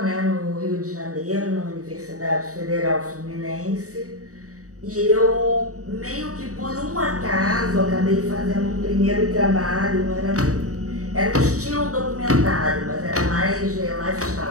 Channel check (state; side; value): late; left; 0.66 ms